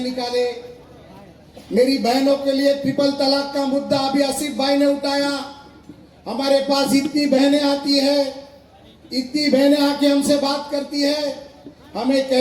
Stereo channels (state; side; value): identical; both; correlation 1.00